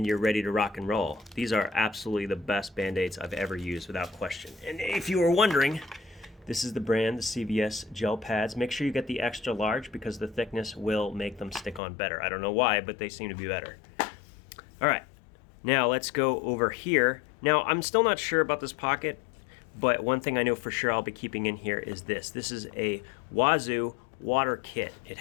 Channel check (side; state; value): right; drops out; at 11.8 s